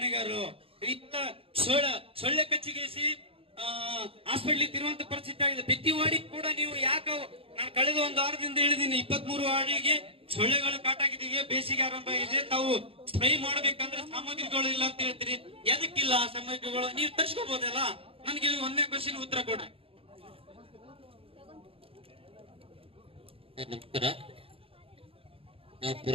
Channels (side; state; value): left; late; 0.27 ms